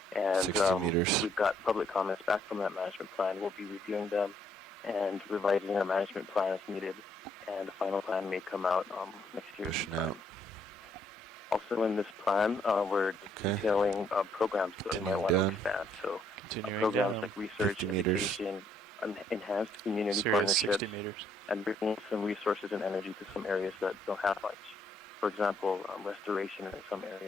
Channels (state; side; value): normal; both; correlation 0.69